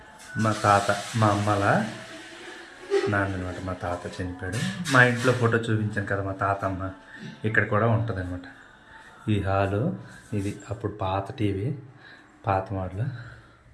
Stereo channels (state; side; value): identical; both; correlation 1.00